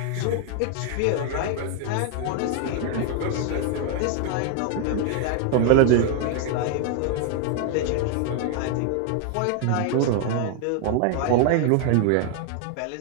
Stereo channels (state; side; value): different; both; correlation 0.00